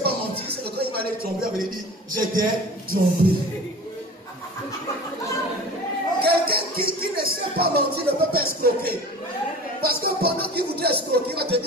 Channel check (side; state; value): both; normal; correlation 0.38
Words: pas mentir, c'est que quand il va aller tromper, il va lui dire, j'étais trompé. Quelqu'un qui ne sait pas mentir ne peut pas escroquer. Parce que pendant qu'il voudrait escroquer, il va te